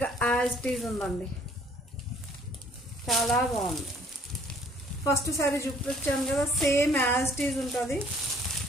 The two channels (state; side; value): normal; both; correlation 0.59